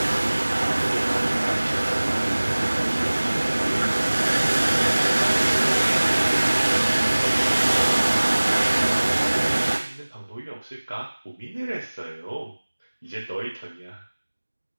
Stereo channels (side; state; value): both; inverted; correlation -1.00